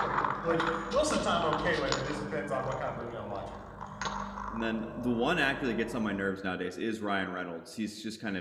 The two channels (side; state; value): both; identical; correlation 1.00